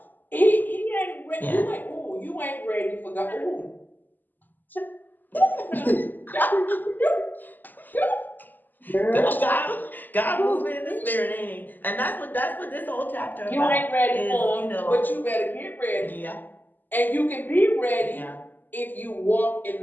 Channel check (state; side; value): late; right; 0.087 ms